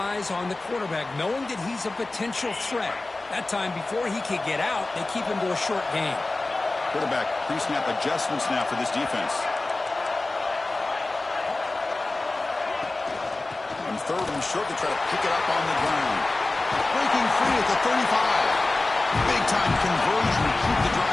on the quarterback, knowing that he's a potential threat. That time, before he could get out, they keep him to a short gain. Quarterback pre-snap adjustments now for this defense. On 3rd and short, they try to pick it up on the ground. Breaking free at the 35. Big-time conversion to keep the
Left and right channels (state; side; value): quieter; right; 3.1 dB